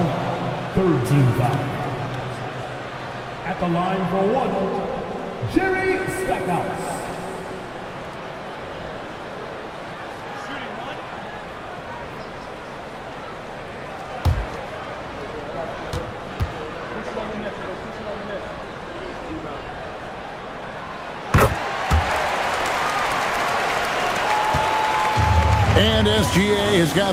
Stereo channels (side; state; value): both; identical; correlation 1.00